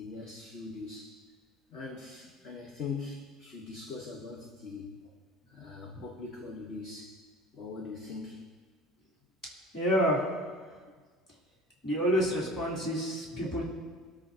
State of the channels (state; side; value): normal; both; correlation 0.41